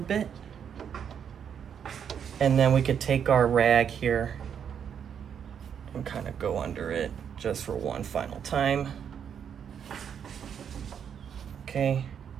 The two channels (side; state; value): left; quieter; 8.0 dB